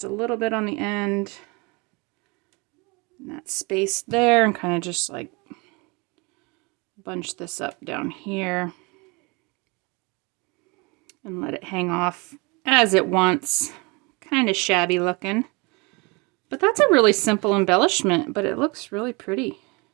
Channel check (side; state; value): left; quieter; 28.0 dB